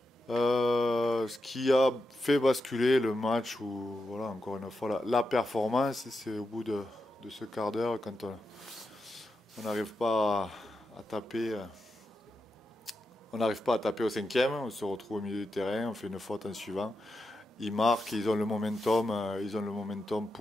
Ce qui a fait basculer le match où, voilà, encore une fois, la performance, c'est au bout de ce quart d'heure quand on n'arrive pas à taper. On n'arrive pas à taper au cinquième, on se retrouve au milieu du terrain, on fait une faute en suivant. Ils marquent, ils ont le momentum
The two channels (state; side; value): normal; both; correlation 0.88